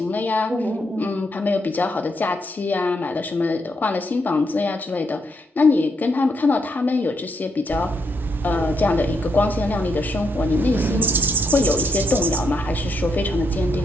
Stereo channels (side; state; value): both; normal; correlation 0.78